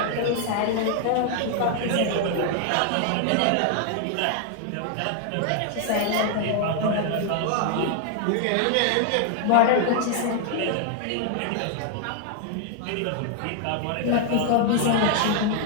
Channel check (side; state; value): both; different; correlation 0.00